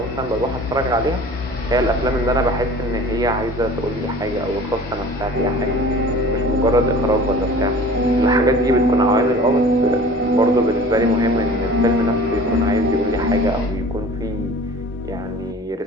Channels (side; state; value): both; normal; correlation 0.44